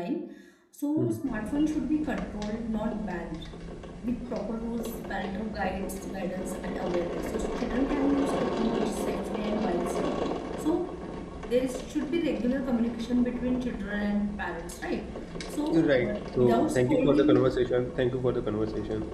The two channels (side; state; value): both; identical; correlation 1.00